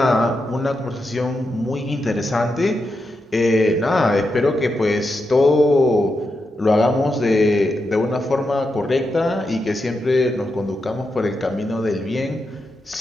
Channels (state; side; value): normal; both; correlation 0.86